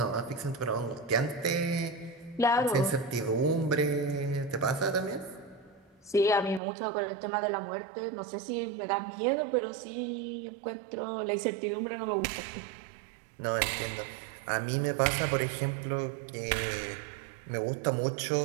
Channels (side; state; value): left; drops out; at 6.6 s